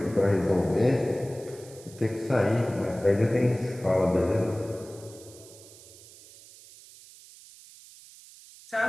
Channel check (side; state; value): right; noise; hiss, 21 dB below the sound